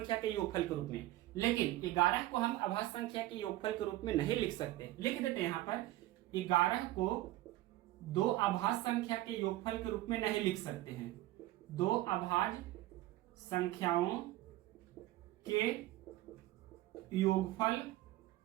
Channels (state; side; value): quieter; left; 16.2 dB